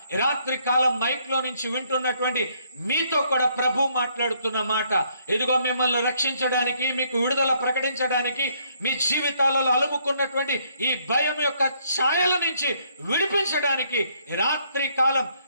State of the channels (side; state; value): both; inverted; correlation -0.69